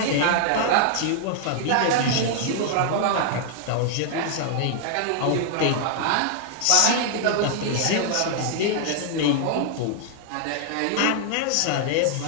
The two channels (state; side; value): different; both; correlation -0.01